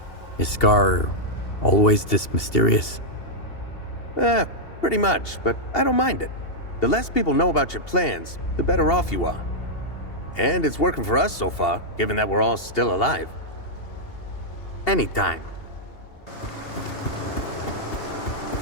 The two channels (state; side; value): late; right; 2.8 ms